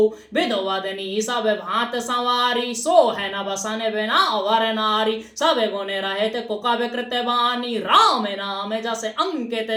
विधवदनी सब भांत सवारी सो है न बसन बिना वर नारी सब गुण रहित कुकव कृत बानी राम नाम जस अंकित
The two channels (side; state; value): both; identical; correlation 1.00